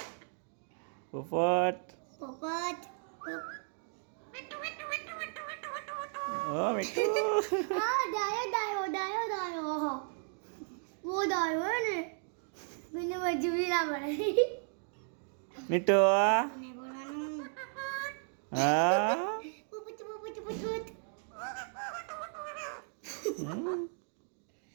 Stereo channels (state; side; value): silent; left; 54 dB below the other